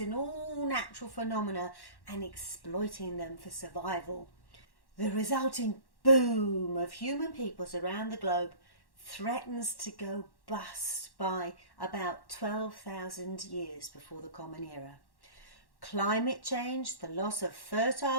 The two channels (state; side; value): late; right; 1.1 ms